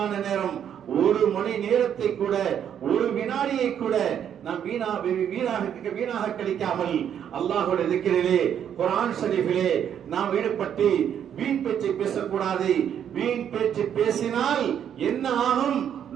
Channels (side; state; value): left; quieter; 9.1 dB